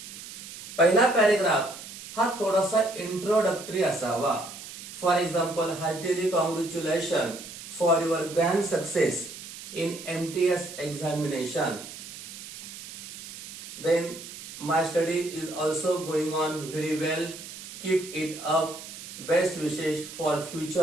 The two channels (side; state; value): right; noise; hiss, 12 dB below the sound